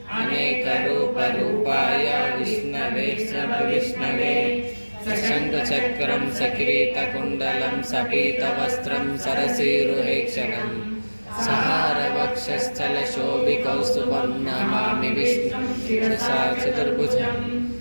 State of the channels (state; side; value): inverted; both; correlation -1.00